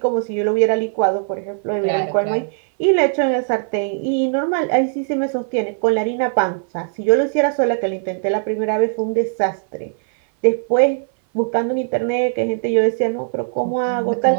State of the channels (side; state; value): left; silent; 59 dB below the other